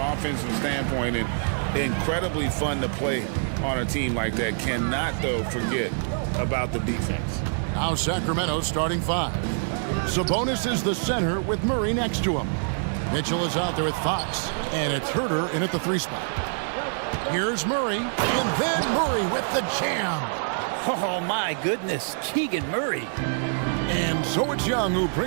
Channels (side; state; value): left; silent; digital silence